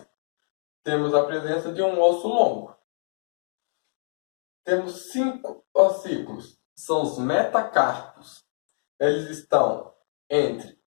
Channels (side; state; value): right; silent; digital silence